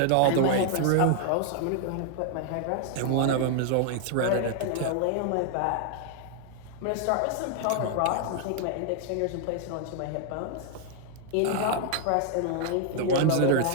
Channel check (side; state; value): both; different; correlation 0.00